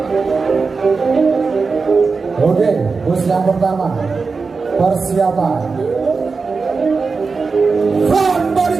Oke, bus yang pertama. Persiapan front body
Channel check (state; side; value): quieter; left; 4.6 dB